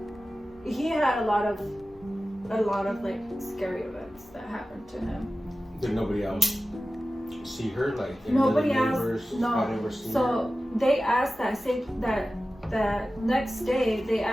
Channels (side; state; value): both; normal; correlation 0.95